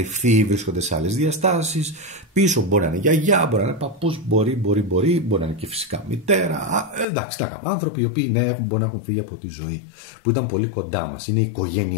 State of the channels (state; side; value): drops out; right; at 7.1 s